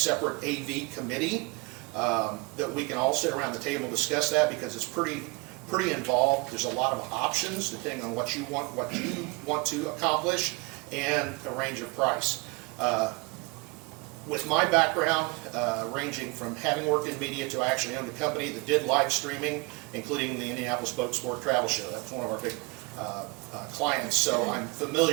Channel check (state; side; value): quieter; left; 28.1 dB